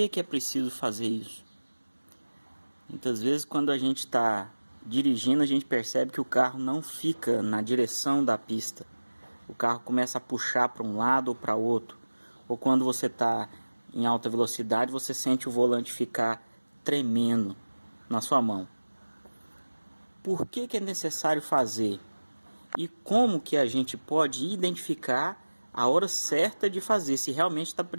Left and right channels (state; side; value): inverted; both; correlation -1.00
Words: é preciso fazer isso? Muitas vezes quando a gente está dirigindo, a gente percebe que o carro não fica na direção da pista. O carro começa a puxar para um lado ou para outro. Ou quando você está em alta velocidade, você sente o volante ficar tremendo na sua mão. Por que é necessário fazer? E como que a gente pode identificar a hora certa de fazer, se realmente está